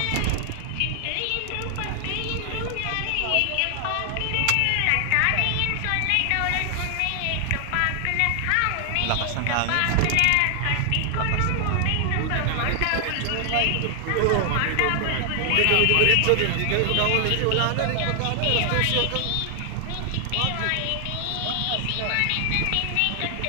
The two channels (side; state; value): both; different; correlation 0.00